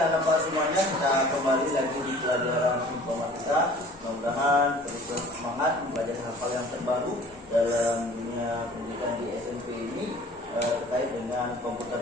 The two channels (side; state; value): both; normal; correlation 0.48